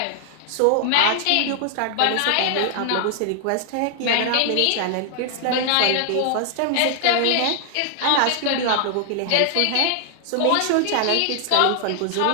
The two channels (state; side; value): different; both; correlation 0.00